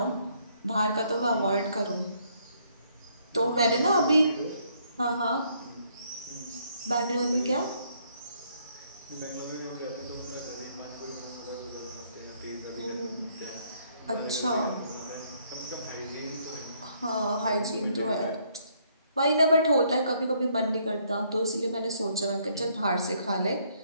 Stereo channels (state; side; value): inverted; both; correlation -0.68